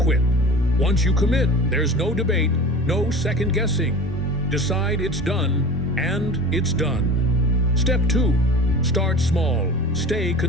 Once you commit, there's no debate, no second guessing. Decide it's done, and it's done. Step 2, start small, stay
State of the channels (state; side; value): normal; both; correlation 0.37